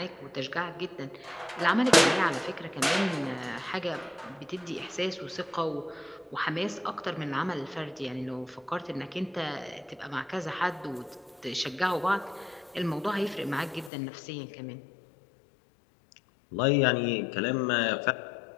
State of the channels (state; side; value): drops out; right; at 13.9 s